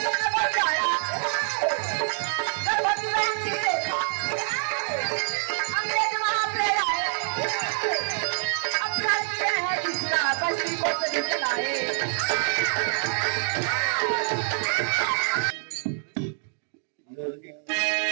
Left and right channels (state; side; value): silent; left; digital silence